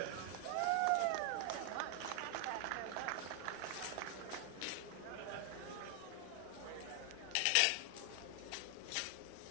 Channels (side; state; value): both; different; correlation 0.00